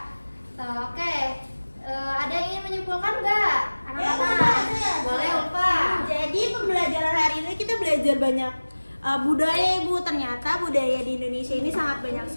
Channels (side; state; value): both; inverted; correlation -1.00